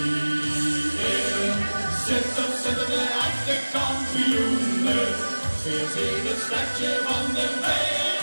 zitten de echte kampioenen. Veert in het stadje van de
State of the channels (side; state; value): both; inverted; correlation -1.00